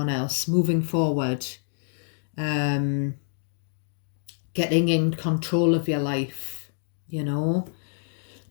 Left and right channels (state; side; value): silent; right; digital silence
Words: else, moving forward, getting in control of your life,